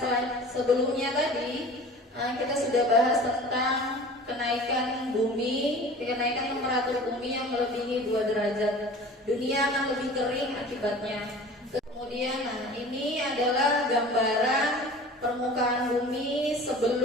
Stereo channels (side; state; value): both; normal; correlation 0.41